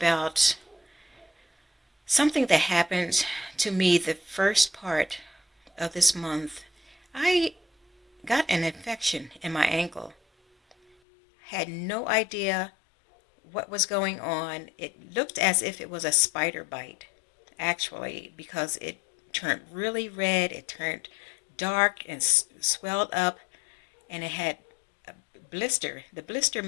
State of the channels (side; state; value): right; drops out; at 11.0 s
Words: something that happened to me the first part of this month. I got an infection in my ankle. Had no idea what was going on. It looked as if it was a spider bite, actually, because it turned really red. It turned dark and swelled up, and it had a blister. The blister